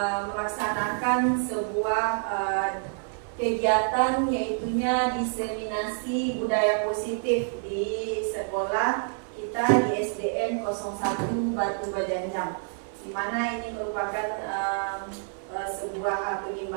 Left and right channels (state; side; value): silent; left; 60 dB below the other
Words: melaksanakan sebuah kegiatan, yaitunya diseminasi budaya positif di sekolah kita di SDN 01 Batu Bajanjang, di mana ini merupakan sebuah